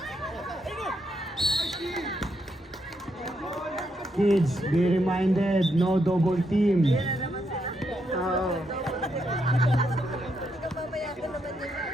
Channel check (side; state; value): both; normal; correlation 0.79